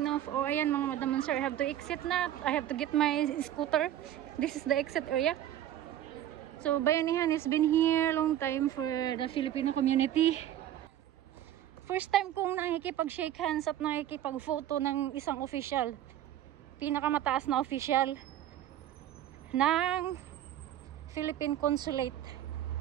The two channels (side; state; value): left; quieter; 12.0 dB